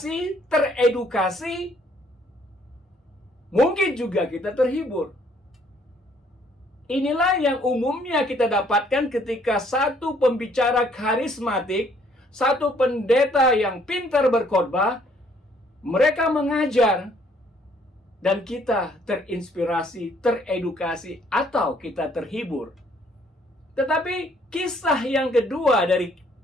teredukasi. Mungkin juga kita terhibur. Inilah yang umumnya kita dapatkan ketika satu pembicara karismatik, satu pendeta yang pintar berkhotbah, mereka mengajar, dan kita terinspirasi, teredukasi, atau kita terhibur. Tetapi kisah yang kedua dari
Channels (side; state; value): both; normal; correlation 0.64